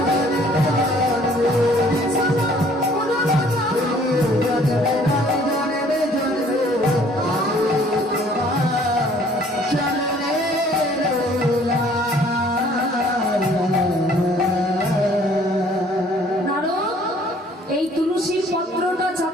এই তুলসীর পত্রটা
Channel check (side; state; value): both; normal; correlation 0.57